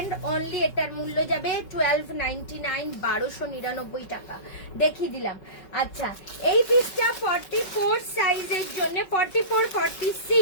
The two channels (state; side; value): late; right; 5.3 ms